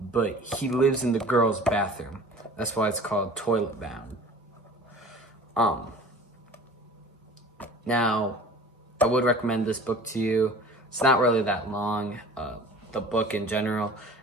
but he lives in the girl's bathroom. That's why it's called Toilet Bound. Now, I would recommend this book to you. It's not really that long, the book in general,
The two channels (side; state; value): both; normal; correlation 0.43